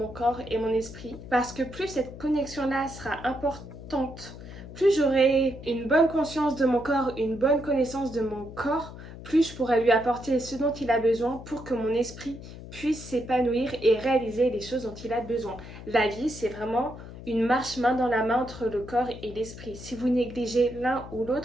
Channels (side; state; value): left; noise; hum, 14 dB below the sound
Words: corps et mon esprit. Parce que plus cette connexion-là sera importante, plus j'aurai une bonne conscience de mon corps, une bonne connaissance de mon corps, plus je pourrai lui apporter ce dont il a besoin pour que mon esprit puisse s'épanouir et réaliser les choses dont il a besoin. La vie, c'est vraiment une marche main dans la main entre le corps et l'esprit. Si vous négligez l'un ou